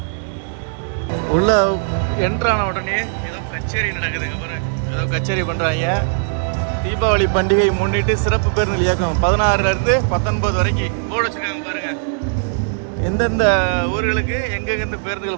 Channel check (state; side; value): silent; left; digital silence